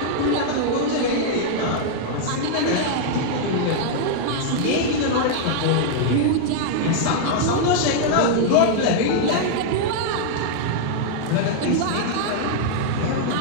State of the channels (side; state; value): both; different; correlation -0.01